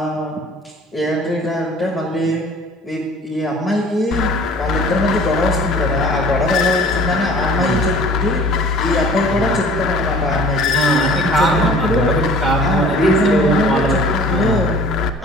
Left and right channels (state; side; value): normal; both; correlation 0.48